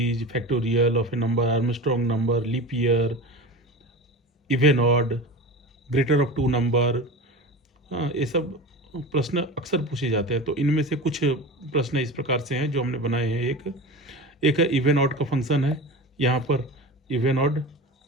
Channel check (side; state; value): both; normal; correlation 0.30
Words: factorial of a number, Armstrong number, leap year, even odd, greater of two number. हाँ, ये सब प्रश्न अक्सर पूछे जाते हैं। तो इनमें से कुछ प्रश्न इस प्रकार से हैं जो हमने बनाए हैं। एक है इवन ऑड का फंक्शन है। यहाँ पर इवन ऑड